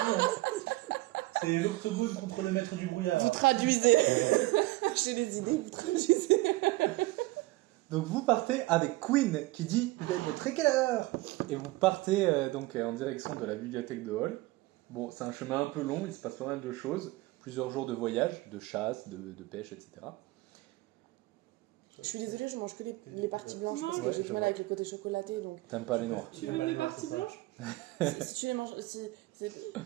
C'est l'octogone contre le maître du brouillard. Vous traduisez. J'ai des idées, vous traduisez. Donc vous partez avec Queen qui dit « Vous allez mettre à quelle heure ?» Et vous partez donc en direction de la bibliothèque de Hall. Bon, c'est un chemin un peu long, il se passe pas mal de choses. Plusieurs jours de voyage, de chasse, de pêche, etc. Je suis désolée, je mange que les parties blanches Non, parce que ouais, j'ai je du mal vois. avec le côté chocolaté. Donc, T'aimes pas les noirs. Tu Il y a veux pas mes les noirs, parties c'est ça. blanches? si tu les manges.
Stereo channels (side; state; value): left; quieter; 19.8 dB